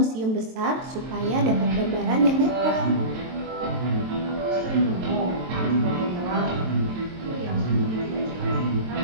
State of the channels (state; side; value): late; left; 23 ms